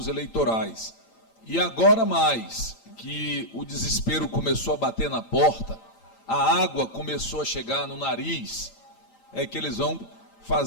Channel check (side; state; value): right; late; 8.8 ms